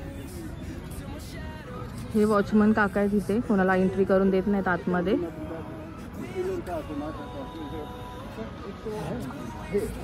हे वॉचमन काका आहे तिथे, कोणाला एंट्री करून देत नाहीत आतमध्ये.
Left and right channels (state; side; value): identical; both; correlation 1.00